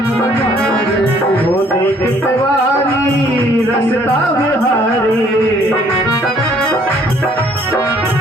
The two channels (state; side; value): normal; both; correlation 0.61